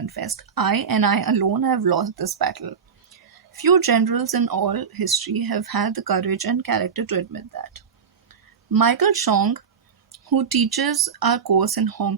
"I and I alone have lost this battle." Few generals in all history have had the courage and character to admit that. Michael Chong, who teaches our course in Hong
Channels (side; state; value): left; quieter; 6.5 dB